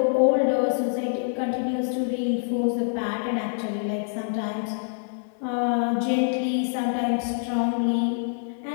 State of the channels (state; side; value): silent; right; digital silence